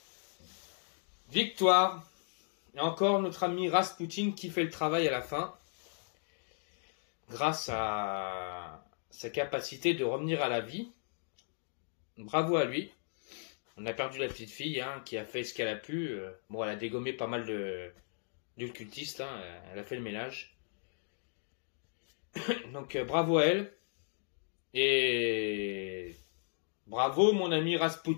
Victoire. Et encore notre ami Rasputin qui fait le travail à la fin. Grâce à sa capacité de revenir à la vie. Bravo à lui. On a perdu la petite fille qui a fait ce qu'elle a pu. Bon, elle a dégommé pas mal de cultistes. Elle a fait le ménage. Donc bravo à elle. Et bravo mon ami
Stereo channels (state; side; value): silent; right; digital silence